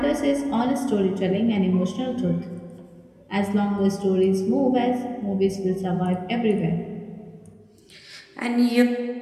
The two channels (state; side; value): identical; both; correlation 1.00